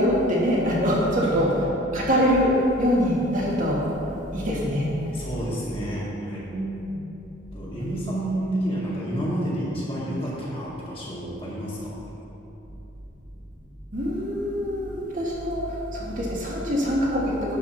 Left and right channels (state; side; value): normal; both; correlation 0.51